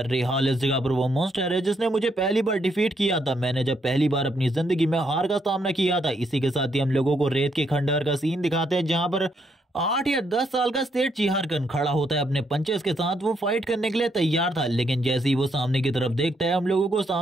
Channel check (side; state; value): both; normal; correlation 0.75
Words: रेहाल इस जगह पर वो मॉन्स्टर है जिसने मुझे पहली बार डिफीट किया था, मैंने जब पहली बार अपनी जिंदगी में हार का सामना किया था। इसी के साथ ही हम लोगों को रेत के खंडहर का सीन दिखाते हैं जहां पर 8 या 10 साल का सेठ चिहारकन खड़ा होता है अपने पंचेस के साथ। वो फाइट करने के लिए तैयार था, लेकिन जैसे ही वो सामने की तरफ देखता है हम लोगों को